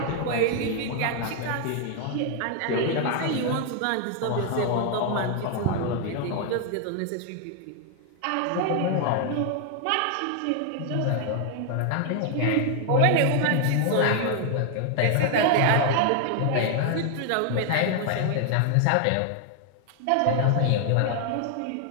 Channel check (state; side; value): different; both; correlation 0.00